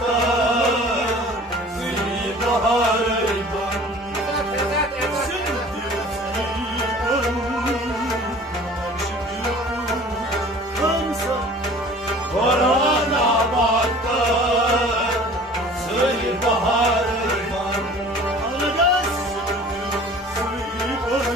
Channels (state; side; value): normal; both; correlation 0.46